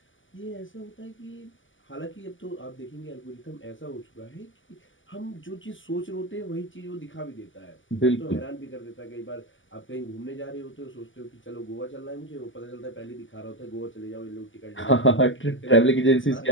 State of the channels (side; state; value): right; late; 0.56 ms